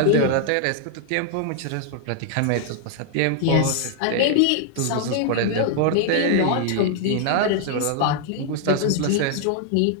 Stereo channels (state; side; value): different; both; correlation 0.00